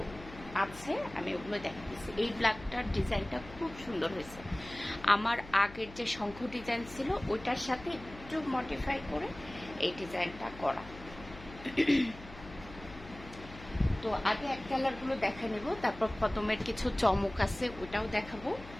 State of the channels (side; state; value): left; noise; hum, 16 dB below the sound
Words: আছে আমি ওগুলো দেখাচ্ছি। এই ব্ল্যাকটার ডিজাইনটা খুব সুন্দর হয়েছে। আমার আগের যে শঙ্খ ডিজাইন ছিল ওইটার সাথে একটু মডিফাই করে এই ডিজাইনটা করা। তো আগে এক কালারগুলো দেখা নেব, তারপর কদমের কিছু চমক আছে ওটাও দেখাবো।